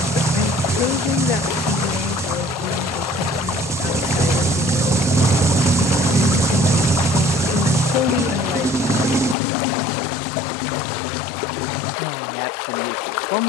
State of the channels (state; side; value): drops out; right; at 9.3 s